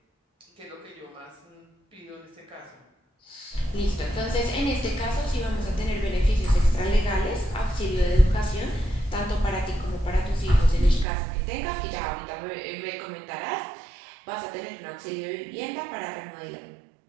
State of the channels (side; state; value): left; drops out; at 11.1 s